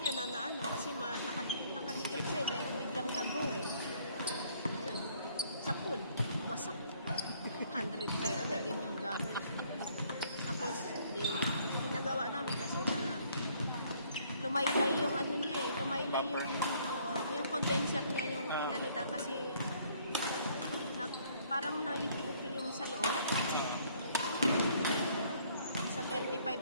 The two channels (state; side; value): inverted; both; correlation -0.63